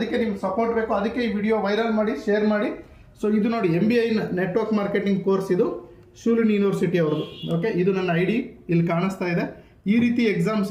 ನಿಮ್ಗೆ ಸಪೋರ್ಟ್ ಬೇಕು. ಅದಕ್ಕೆ ಈ ವಿಡಿಯೋ ವೈರಲ್ ಮಾಡಿ, ಶೇರ್ ಮಾಡಿ. ಸೊ ಇದು ನೋಡಿ MBA ನೆಟ್ವರ್ಕ್ ಮಾರ್ಕೆಟಿಂಗ್ ಕೋರ್ಸ್, ಇದು ಶೂಲಿನಿ ಯೂನಿವರ್ಸಿಟಿ ಅವ್ರದ್ದು. ಓಕೆ, ಇದು ನನ್ನ ID ಇಲ್ಲಿ ಕಾಣಿಸ್ತಾ ಇದೆ. ಈ ರೀತಿ ಎಕ್ಸಾಮ್ಸ್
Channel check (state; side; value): identical; both; correlation 1.00